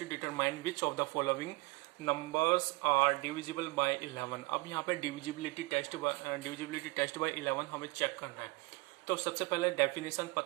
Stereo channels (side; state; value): left; quieter; 24.4 dB